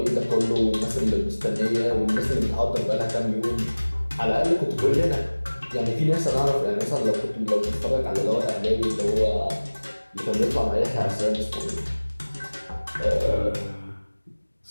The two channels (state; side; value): inverted; both; correlation -1.00